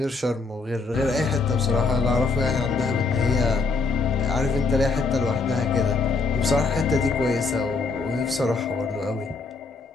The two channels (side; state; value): right; quieter; 4.1 dB